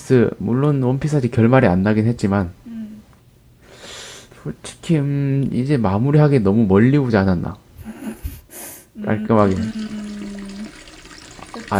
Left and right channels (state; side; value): identical; both; correlation 1.00